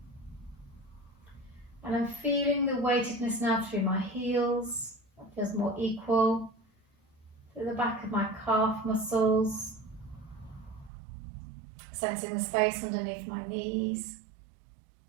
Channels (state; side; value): drops out; left; at 10.9 s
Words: And I'm feeling the weightedness now through my heels. That feels more equal. Through the back of my calf muscles. Sensing the space underneath my knees.